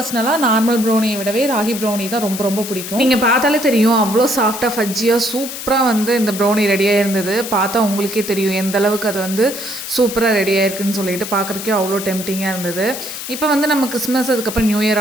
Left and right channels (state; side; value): noise; left; hiss, 8 dB below the sound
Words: நார்மல் ப்ரௌனியை விடவே ராகி ப்ரௌனி தான் ரொம்ப ரொம்ப பிடிக்கும். நீங்கள் பார்த்தாலே தெரியும், அவ்வளோ சாஃப்டாக ஃபஜ்ஜியாக சூப்பராக வந்து இந்த ப்ரௌனி ரெடியாக இருந்தது. பார்த்தா உங்களுக்கே தெரியும் எந்த அளவுக்கு அது வந்து சூப்பராக ரெடி ஆயிருக்குன்னு சொல்லிட்டு பார்க்குறக்கே அவ்வளோ டெம்டிங்காக இருந்தது. இப்போ வந்து நம்ம கிறிஸ்மஸ் அதுக்கப்புறம் நியூ இயர்